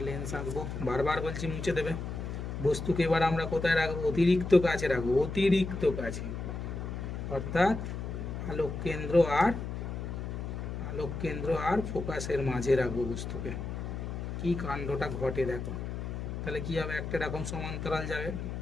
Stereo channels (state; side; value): noise; left; hum, 5 dB below the sound